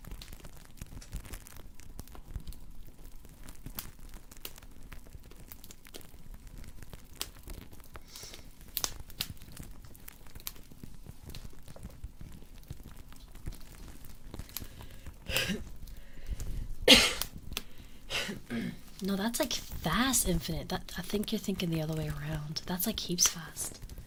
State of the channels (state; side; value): identical; both; correlation 1.00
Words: No, that's like fast infinite. That I think you're thinking the other way around. That's like heaps fast.